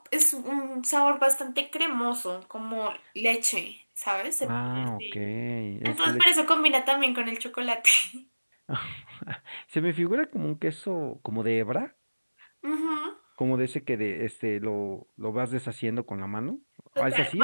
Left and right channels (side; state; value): both; inverted; correlation -1.00